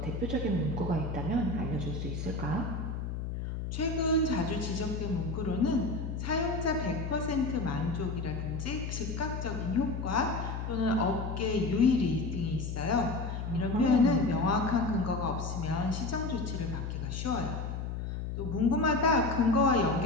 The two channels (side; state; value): left; noise; hum, 4 dB below the sound